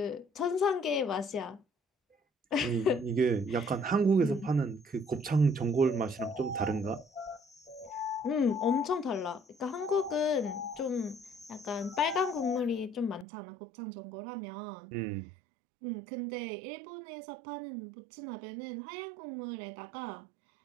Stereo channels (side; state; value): left; drops out; at 13.2 s